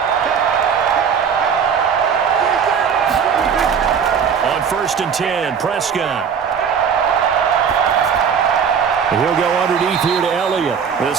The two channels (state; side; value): quieter; left; 6.9 dB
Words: First and 10, Prescott. He'll go underneath here to Elliott.